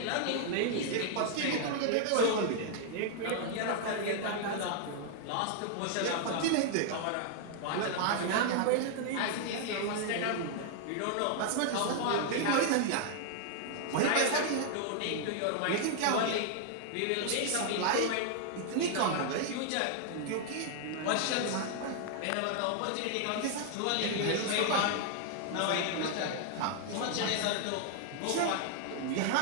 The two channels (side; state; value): both; different; correlation 0.00